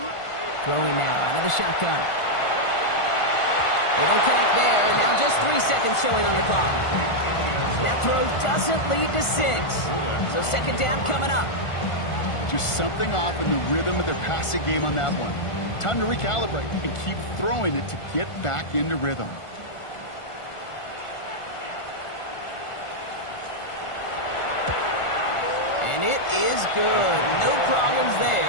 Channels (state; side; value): late; right; 1.5 ms